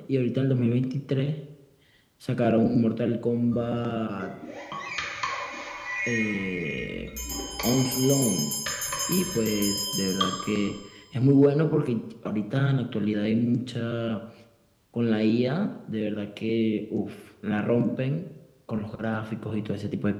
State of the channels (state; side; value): identical; both; correlation 1.00